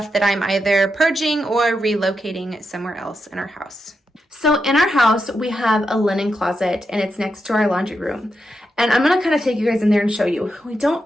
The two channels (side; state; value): both; normal; correlation 0.86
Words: that I'm either purging or relocating somewhere else in our house. So in our house, we have a linen closet and it's next to our laundry room. And I'm gonna kind of take you guys in there and show you. We don't